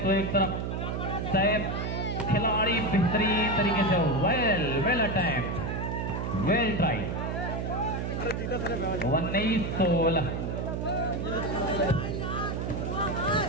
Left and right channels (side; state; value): right; noise; hum, 2 dB below the sound